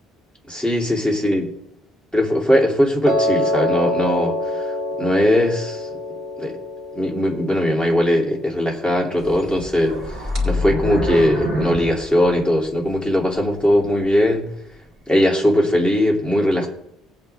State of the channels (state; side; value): normal; both; correlation 0.83